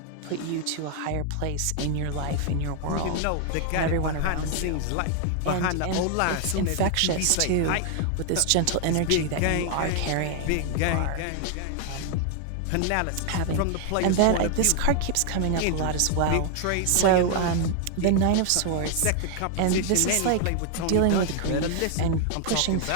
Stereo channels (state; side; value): different; both; correlation 0.00